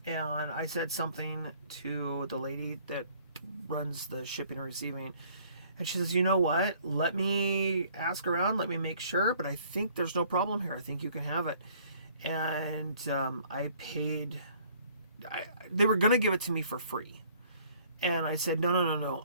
and I said something to the lady that runs the shipping and receiving, and she says, you know what, let me ask around, let me make sure, but I think there's no problem here. I think you can have it. And I paid, they were going to give it to me for free, and I said,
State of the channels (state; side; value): inverted; both; correlation -0.58